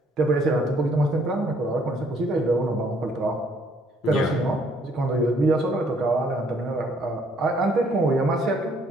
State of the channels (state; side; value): normal; both; correlation 0.65